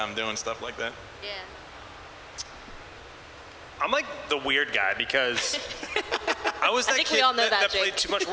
doing stuff like that. Yeah. I'm like the weird guy because I was that kid that played too much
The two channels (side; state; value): both; identical; correlation 1.00